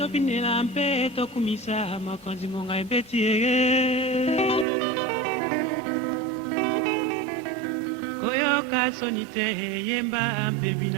mpe tokumisa mokonzi ngonga ebeti eye koyoka soni te yemba mpe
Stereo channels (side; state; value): left; drops out; at 4.7 s